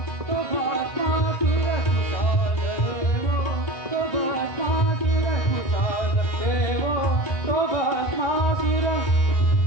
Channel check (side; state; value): right; late; 1.3 ms